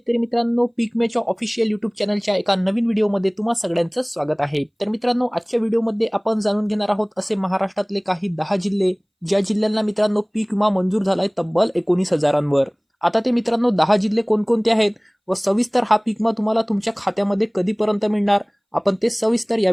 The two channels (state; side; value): identical; both; correlation 1.00